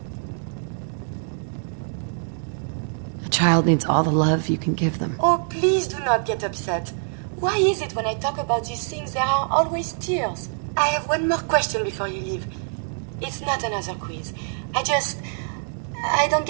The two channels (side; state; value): left; silent; digital silence